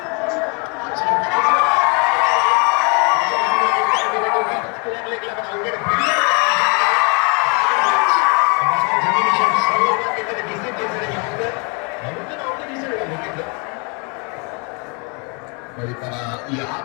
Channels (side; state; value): right; quieter; 34.4 dB